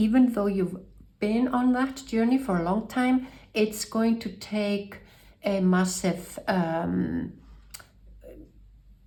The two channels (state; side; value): identical; both; correlation 1.00